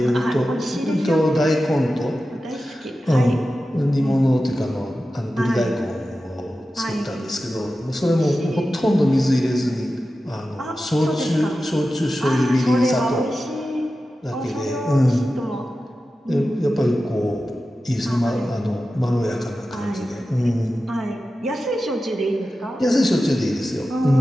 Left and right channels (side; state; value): both; normal; correlation 0.93